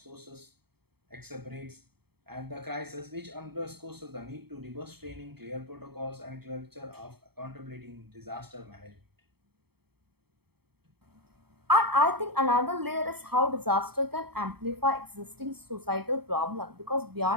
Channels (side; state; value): left; late; 0.96 ms